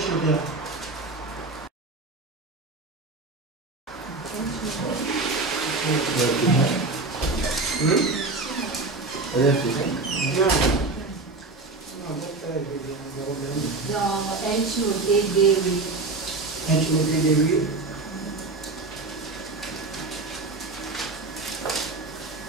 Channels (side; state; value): left; quieter; 3.5 dB